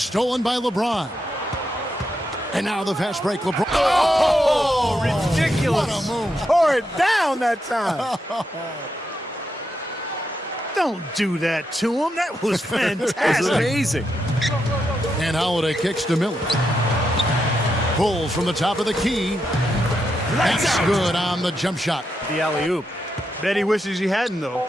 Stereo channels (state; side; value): normal; both; correlation 0.83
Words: by LeBron. And now the fast break. LeBron. Oh, ridiculous. What a move. Tore it down that time. Don't do that to him. That was fantastic. That's amazing. And Holiday kicks to Miller. Pulls from the top of the key. That's good on the jump shot. The alley-oop. Bet he wishes he hadn't, though.